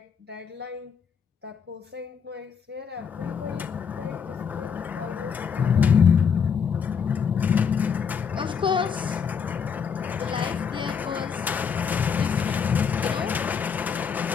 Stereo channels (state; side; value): quieter; right; 6.7 dB